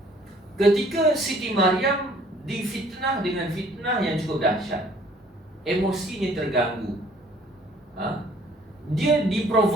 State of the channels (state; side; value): normal; both; correlation 0.58